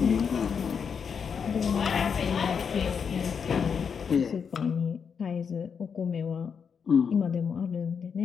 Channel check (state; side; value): quieter; right; 6.5 dB